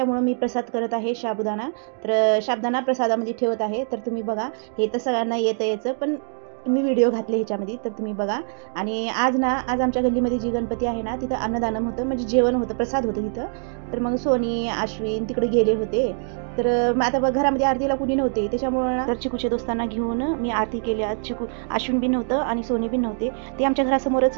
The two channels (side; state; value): left; silent; 61 dB below the other